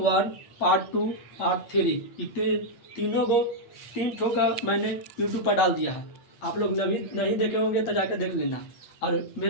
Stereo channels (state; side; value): late; right; 8.7 ms